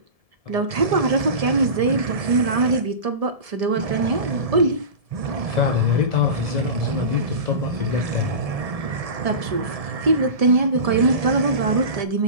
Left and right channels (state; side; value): late; left; 1.7 ms